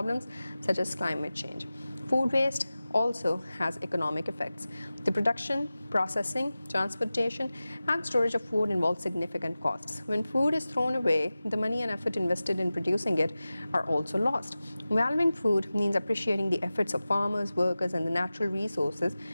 such as climate change. Food waste also has economic effects. The production, processing, transportation, and storage of food involves significant costs. When food is thrown away, the money and effort invested in producing it are also lost. Valuing food means appreciating the efforts of farmers, workers, and the natural resources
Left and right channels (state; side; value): inverted; both; correlation -0.96